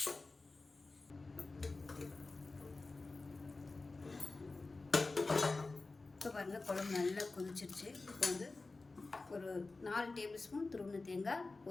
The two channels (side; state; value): right; quieter; 3.5 dB